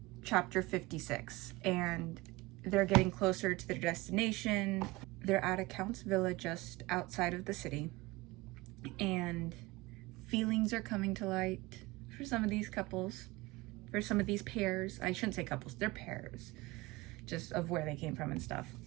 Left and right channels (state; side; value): quieter; left; 21.5 dB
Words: chapter 56. And they're getting closer to their destination. They're at a Count's villa just outside of the city. And feelings are coming to light for some of these couples, for some of these pairs. I shouldn't say couples, they're pairs, just of where they came from and stuff.